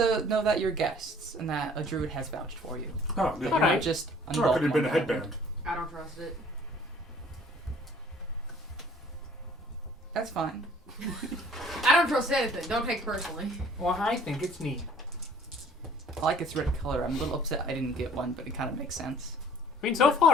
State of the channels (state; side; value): normal; both; correlation 0.54